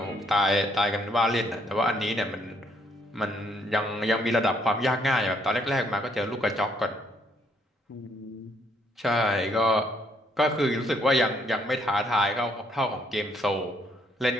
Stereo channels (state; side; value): normal; both; correlation 0.69